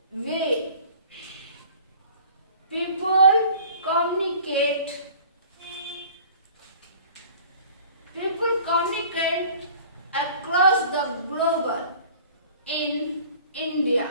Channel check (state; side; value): inverted; both; correlation -0.47